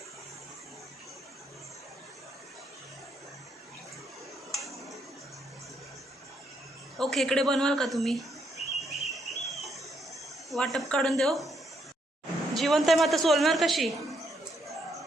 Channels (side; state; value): both; normal; correlation 0.75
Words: ओ खेकडे बनवाल का तुम्ही. वाटप काढून देऊ. जिवंत आहे मग आता सोलणार कशी.